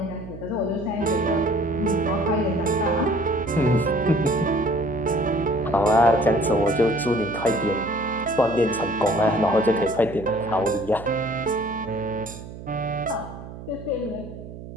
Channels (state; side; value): noise; right; hum, 13 dB below the sound